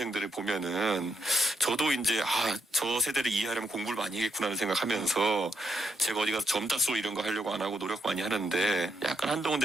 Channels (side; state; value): both; normal; correlation 0.79